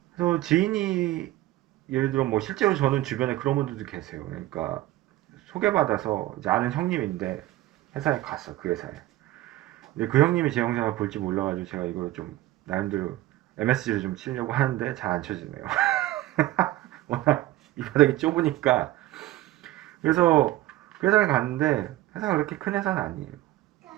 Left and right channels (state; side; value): quieter; left; 16.2 dB